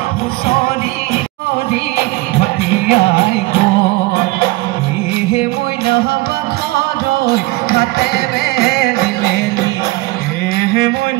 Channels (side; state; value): left; quieter; 21.3 dB